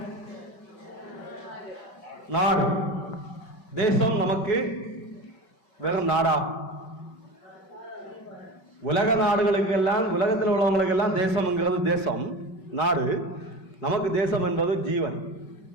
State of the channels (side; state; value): right; late; 5.3 ms